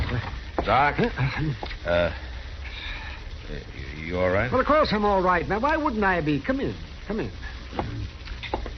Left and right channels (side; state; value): both; identical; correlation 1.00